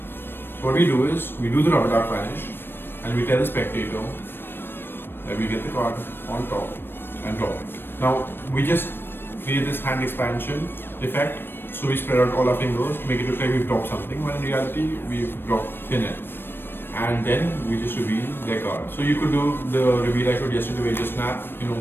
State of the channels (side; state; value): right; late; 0.10 ms